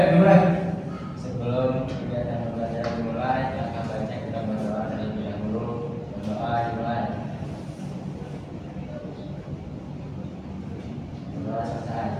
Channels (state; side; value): identical; both; correlation 1.00